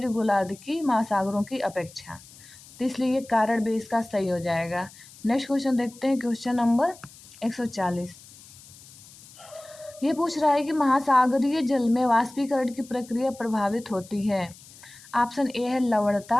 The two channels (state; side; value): noise; left; hiss, 21 dB below the sound